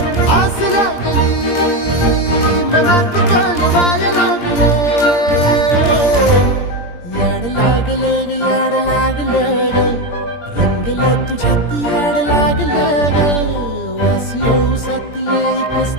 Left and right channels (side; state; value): right; late; 17 ms